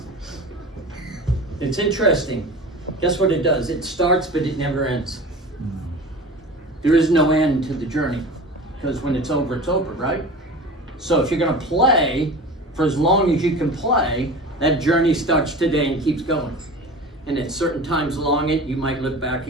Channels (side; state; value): both; normal; correlation 0.35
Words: It's interesting. Guess what it does? It starts, but it never ends. There is no end to the journey, because when it's over, right? So if you're going to play for as long as you can play, that journey starts today and keeps going. And at certain times along it, you might look back